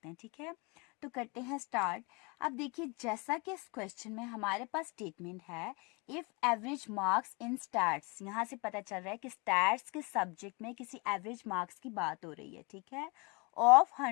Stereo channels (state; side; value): quieter; right; 29.6 dB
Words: हैं, ठीक है। तो करते हैं स्टार्ट। अब देखिए, जैसा कि इस क्वेश्चन में हमारे पास स्टेटमेंट है if average marks in stats, यहाँ से पता चल रहा है कि स्टैट्स के सब्जेक्ट में किसी एवरेज मार्क्स की बात हो रही है, ठीक है, ऑफ